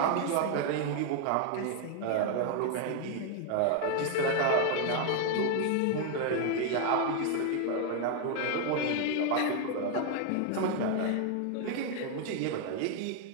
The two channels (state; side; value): different; both; correlation 0.00